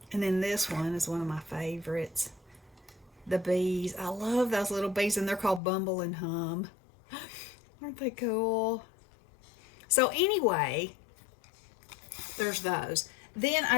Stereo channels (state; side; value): drops out; right; at 5.6 s